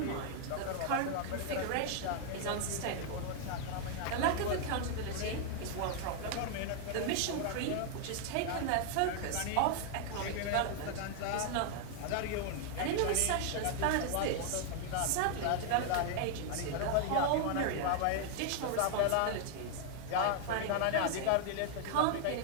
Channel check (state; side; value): different; both; correlation 0.00